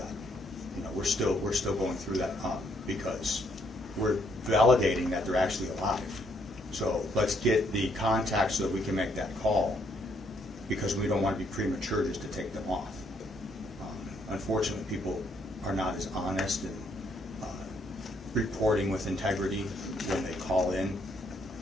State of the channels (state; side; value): normal; both; correlation 0.71